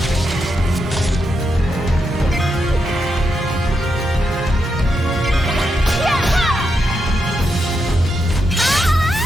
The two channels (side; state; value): both; normal; correlation 0.83